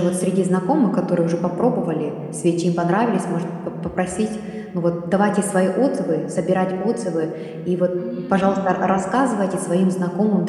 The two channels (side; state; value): both; identical; correlation 1.00